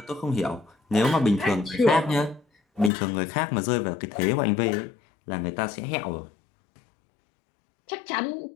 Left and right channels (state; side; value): drops out; right; at 2.9 s